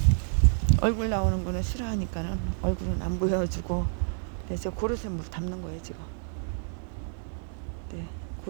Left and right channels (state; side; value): silent; left; 59 dB below the other